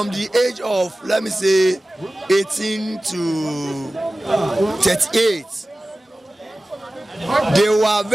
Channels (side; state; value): both; normal; correlation 0.96